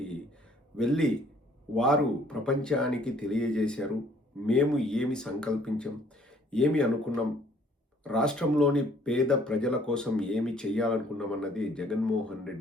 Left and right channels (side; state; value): both; normal; correlation 0.60